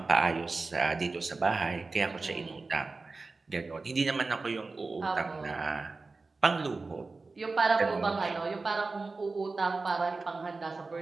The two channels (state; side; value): quieter; left; 3.8 dB